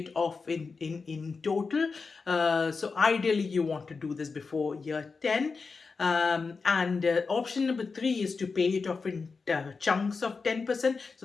off in total. So ideally you want to do this before year 10. And option number three is to pay it off in chunks of 10%.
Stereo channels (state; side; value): quieter; right; 4.6 dB